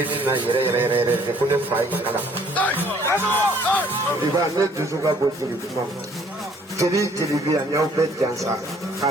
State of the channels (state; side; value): normal; both; correlation 0.60